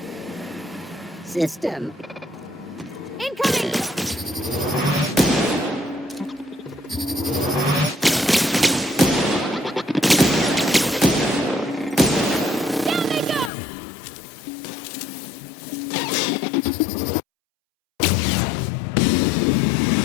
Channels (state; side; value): drops out; right; at 13.5 s